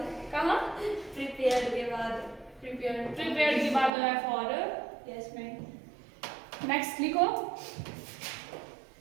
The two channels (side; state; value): left; drops out; at 3.9 s